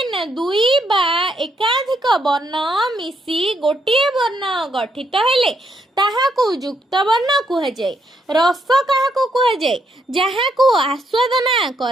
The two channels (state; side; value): normal; both; correlation 0.75